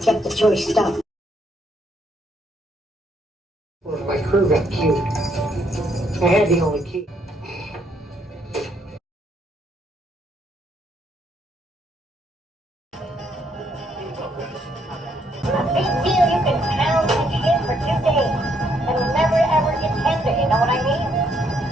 the choice stuff. My crew got cute. I had the only key. A big deal you can pound and shit for 2 days and never ever get tender, you know what I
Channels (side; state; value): both; normal; correlation 0.71